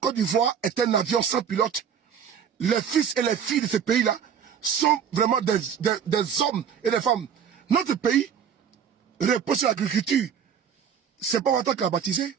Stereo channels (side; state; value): left; quieter; 8.0 dB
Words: d'Ivoire est un avion sans pilote. Les fils et les filles de ce pays-là sont vraiment des hommes et des femmes. Notre pays repose sur l'agriculture. C'est pas Ouattara qui l'a baptisé.